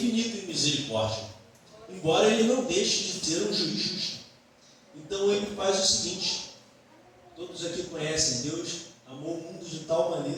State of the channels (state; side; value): identical; both; correlation 1.00